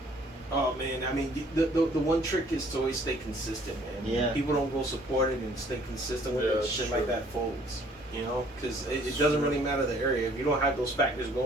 Oh man, I mean the one trick is to always stay consistent, man. Yeah. People don't go support it and stay consistent with Yeah, it. that's Shit true. like that folds, you know, because it doesn't really matter the area. If you don't have those factors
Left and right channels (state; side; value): normal; both; correlation 0.58